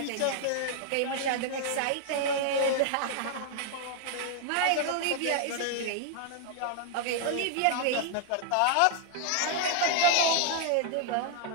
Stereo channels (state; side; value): different; both; correlation 0.00